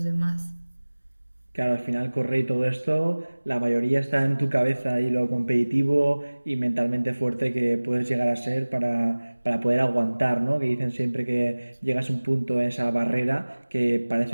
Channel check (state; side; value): inverted; both; correlation -1.00